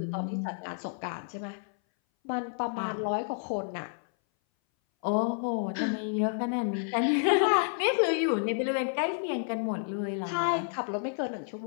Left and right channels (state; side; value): silent; right; 58 dB below the other